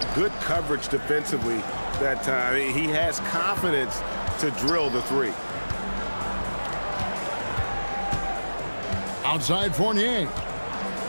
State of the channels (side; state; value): both; inverted; correlation -1.00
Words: good coverage defensively that time, he has confidence to drill the 3. Outside Fournier.